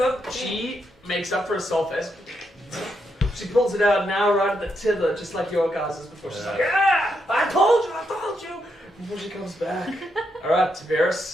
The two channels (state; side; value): normal; both; correlation 0.81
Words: she makes up for herself as she pulls it out now right at the tither, just like your guys' before. She's like, ah! I told you! Before she comes back. Alright,